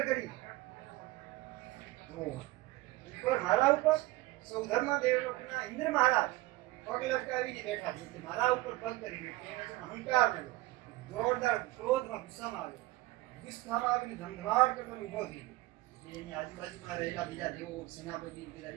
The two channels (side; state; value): left; quieter; 19.4 dB